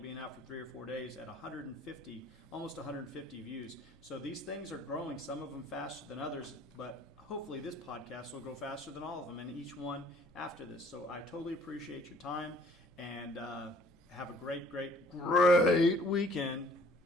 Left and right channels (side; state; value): both; normal; correlation 0.56